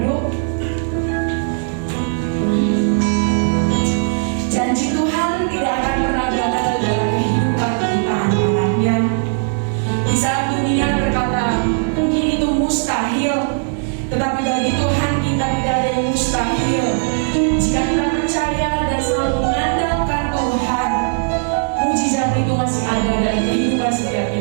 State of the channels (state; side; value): silent; left; digital silence